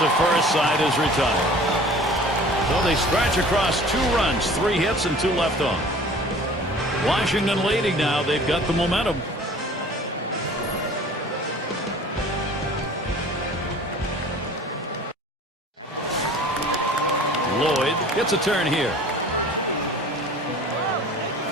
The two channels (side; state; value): both; normal; correlation 0.46